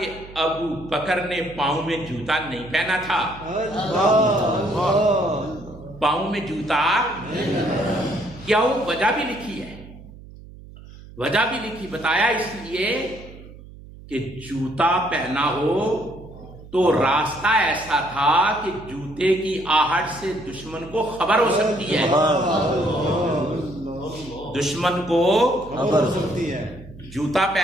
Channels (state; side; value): noise; right; hum, 18 dB below the sound